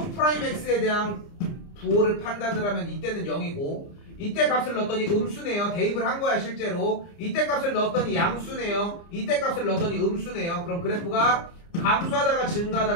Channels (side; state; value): right; late; 29 ms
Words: 대한 부호를 판단을 하면 이때는 0이고 이때 값을 넣었더니 음수네요. 대입을 한 거야 실제로. 이때 값을 넣었더니 양수네요. 이때 값을 넣었더니 음수네요. 그럼 그래프가 감소하다가